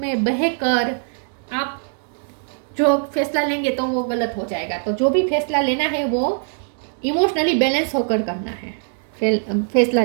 बहकर आप जो फैसला लेंगे तो वो गलत हो जाएगा। तो जो भी फैसला लेना है वो इमोशनली बैलेंस होकर करना है, फैसला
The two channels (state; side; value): silent; left; 65 dB below the other